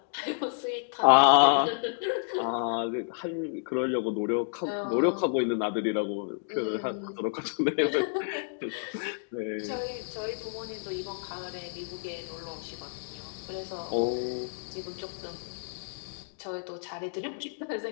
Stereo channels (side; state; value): right; silent; digital silence